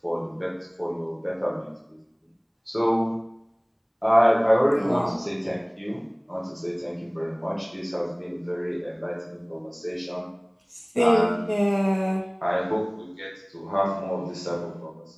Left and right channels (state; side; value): identical; both; correlation 1.00